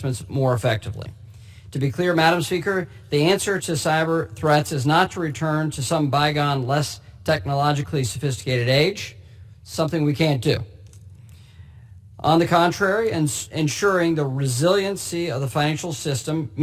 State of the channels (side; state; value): both; identical; correlation 1.00